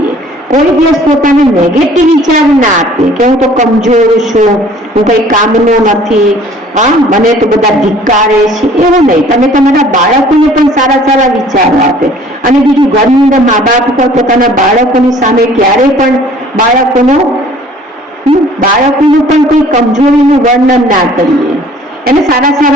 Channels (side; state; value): both; normal; correlation 0.53